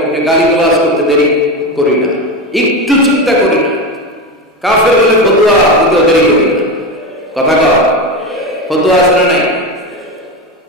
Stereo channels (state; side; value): normal; both; correlation 0.18